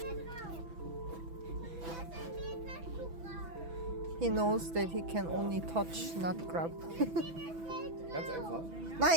He knows that he can only touch, not grab.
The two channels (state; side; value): late; left; 6.0 ms